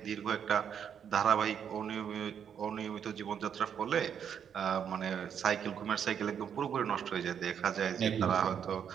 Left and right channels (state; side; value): quieter; left; 8.2 dB